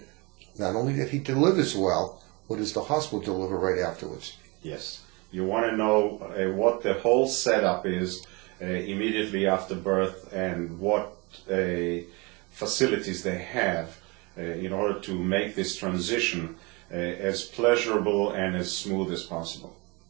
not only that he delivers well, what does the hospital deliver right afterwards? Yes. You want to know what the whole setup is immediately after birth, and what facilities they have in order to make this transition as pleasurable and as smooth as possible.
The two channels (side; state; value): left; quieter; 27.5 dB